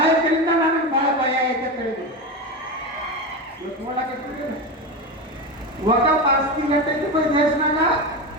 ನನಗೆ ಬಹಳ ಭಯ ಐತೆ ತಿಳಿದು ಇವತ್ತು ನೋಡಕ್ಕೆ ವಕಫ್ ಆಸ್ತಿ ಗಟ್ಟೈತಿ ದೇಶನಾಗ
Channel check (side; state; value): both; normal; correlation 0.19